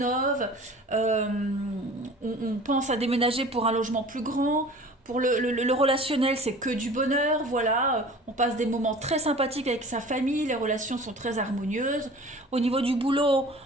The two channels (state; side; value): normal; both; correlation 0.43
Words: on pense à déménager pour un logement plus grand. Pour le relationnel, c'est que du bonheur, voilà. On passe des moments très sympathiques avec sa famille, les relations sont très harmonieuses. Au niveau du boulot,